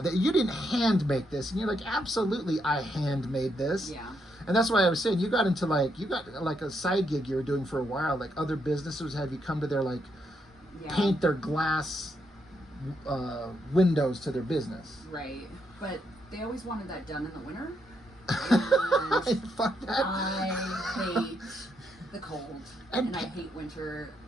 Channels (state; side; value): normal; both; correlation 0.78